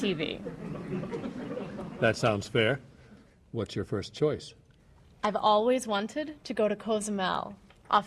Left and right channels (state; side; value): identical; both; correlation 1.00